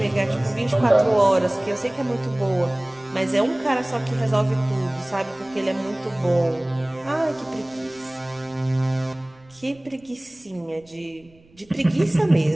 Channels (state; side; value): noise; right; rumble, 29 dB below the sound